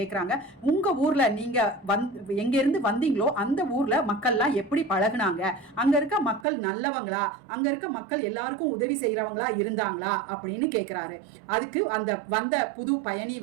உங்கள் ஊரில் நீங்கள் எங்கேருந்து வந்தீங்களோ அந்த ஊரில் மக்கள்லாம் எப்படி பழகுனாங்க, அங்கே இருக்க மக்கள் நல்லவங்களா, அங்கே இருக்க மக்கள் எல்லாருக்கும் உதவி செய்கிறவங்களா இருந்தாங்களா அப்படின்னு கேட்குறாரு. அதுக்கு அந்த வந்த புது பயணி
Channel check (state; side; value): drops out; left; at 6.5 s